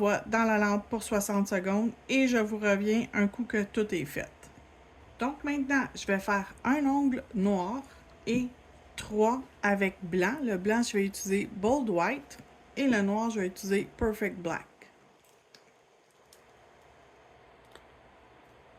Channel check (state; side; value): identical; both; correlation 1.00